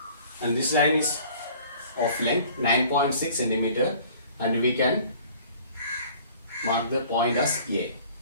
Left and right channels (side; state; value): both; inverted; correlation -0.51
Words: And this line is of length 9.6 centimeter, and we can mark the point as A.